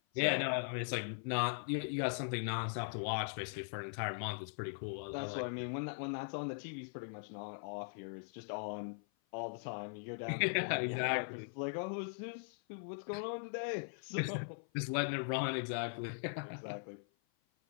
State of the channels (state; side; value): silent; right; 51 dB below the other